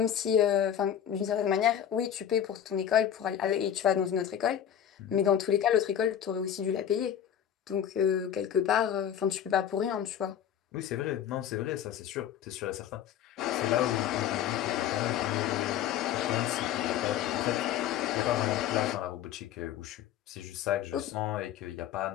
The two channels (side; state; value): right; quieter; 9.8 dB